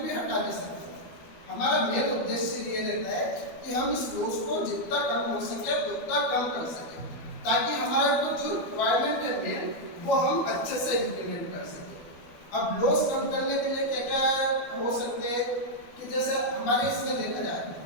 हटा नहीं सकते। हमारा मेन उद्देश्य ये रहता है कि हम इस लॉस को जितना कम हो सके उतना कम कर सके, ताकि हमारा जो रिक्वायरमेंट है मेन वो हम अच्छे से इम्प्लीमेंट कर सके। अब लॉस कम करने के लिए क्या क्या हो सकते हैं कि जैसे हमारे इसमें देखा जाए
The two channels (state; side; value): late; right; 12 ms